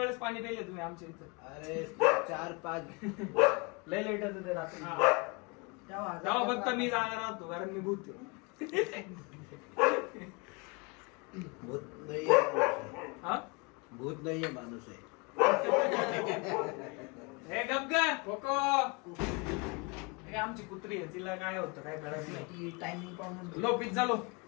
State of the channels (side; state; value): right; quieter; 29.5 dB